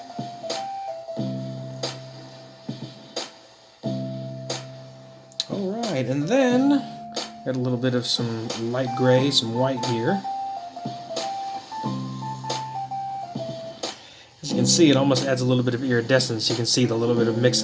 Alright, and then got a little bit of some light gray, some white here. As you can see, it almost adds a little bit of iridescence. You can see the little bit of mix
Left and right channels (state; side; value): identical; both; correlation 1.00